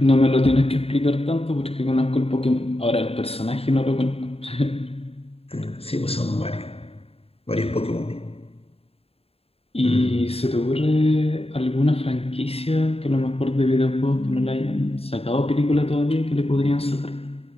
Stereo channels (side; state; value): right; late; 0.28 ms